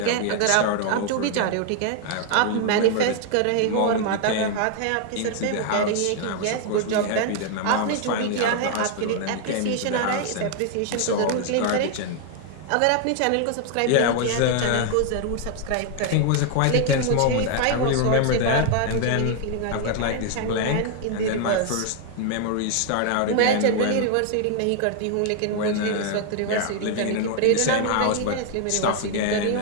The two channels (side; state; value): both; different; correlation 0.00